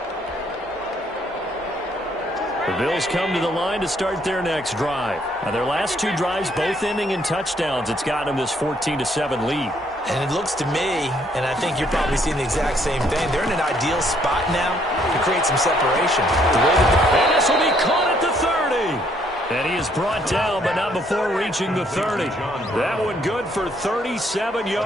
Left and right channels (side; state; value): both; normal; correlation 0.68